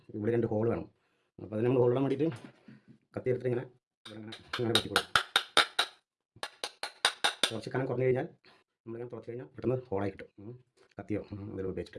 രണ്ട് ഹോൾ വേണം. അപ്പോൾ അതിന് നമ്മൾ ഹോളിടാൻ വേണ്ടിയിട്ട് കത്തി എടുത്തിട്ട് ഇങ്ങനെ വെട്ടിക്കൊടുക്കും. കുറച്ച് കനം കുറഞ്ഞു കഴിഞ്ഞാൽ നമ്മളിങ്ങനെ തുറച്ച് കഴിഞ്ഞാൽ പെട്ടെന്ന് ഹോളായി കിട്ടും. കത്തിയോ എന്തെങ്കിലും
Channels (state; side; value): identical; both; correlation 1.00